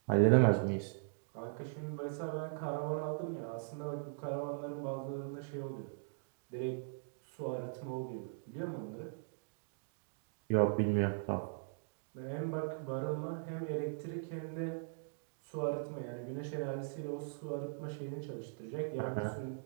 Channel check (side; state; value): left; silent; digital silence